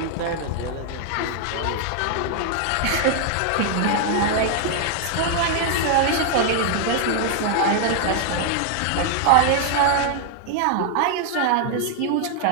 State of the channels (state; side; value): different; both; correlation 0.00